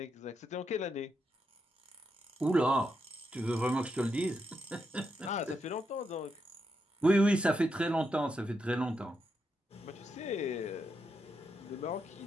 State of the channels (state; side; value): normal; both; correlation 0.82